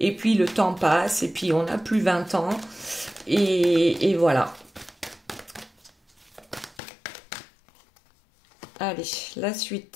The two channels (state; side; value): drops out; right; at 6.8 s